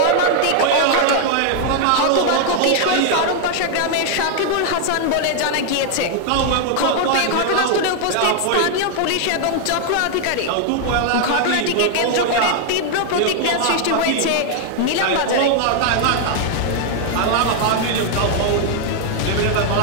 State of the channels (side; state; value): both; different; correlation 0.00